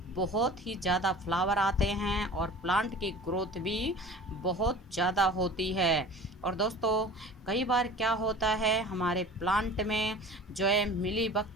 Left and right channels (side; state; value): both; normal; correlation 0.40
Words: बहुत ही ज़्यादा फ्लावर आते हैं और प्लांट की ग्रोथ भी बहुत ज़्यादा होती है। और दोस्तों, कई बार क्या होता है हमारे प्लांट में जो है मिलीबग